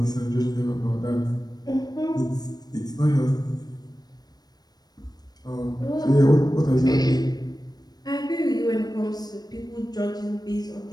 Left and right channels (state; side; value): late; right; 0.19 ms